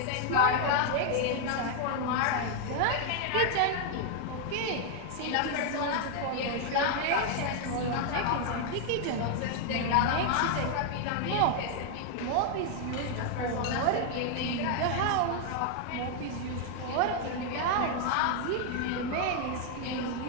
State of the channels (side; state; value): both; different; correlation 0.00